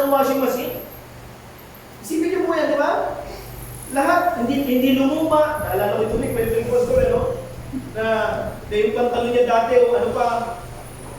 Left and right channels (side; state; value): both; identical; correlation 1.00